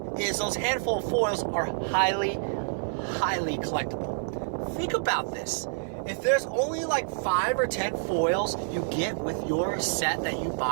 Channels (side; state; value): left; silent; 59 dB below the other